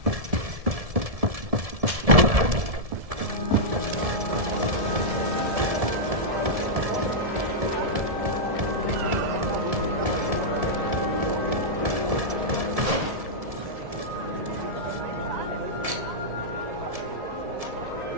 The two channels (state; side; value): late; left; 1.7 ms